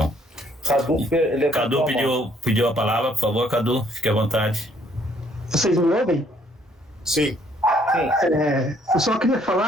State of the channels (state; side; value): normal; both; correlation 0.65